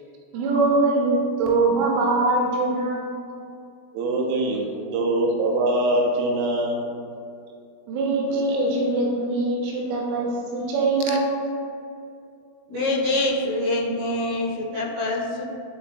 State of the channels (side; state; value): left; late; 20 ms